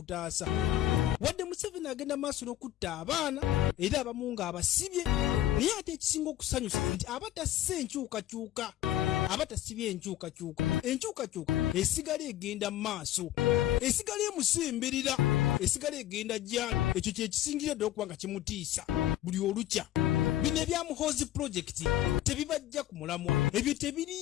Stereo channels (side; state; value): right; quieter; 13.4 dB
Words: Wadde Museveni agenda maaso n'okutta abaana era abamu ng'abasibye naye ate ekisinga okusanyusa nti abatasse enkyukakyuka abatasibye enkyukakyuka esigala egenda mu maaso esigala emusemberera esigala egenda gyali. Ekyo kyekisingira ddala okuba nga kimutiisa buli olukya. Bino ebya Muhoozi project tebibajja ku mulamwa ebyo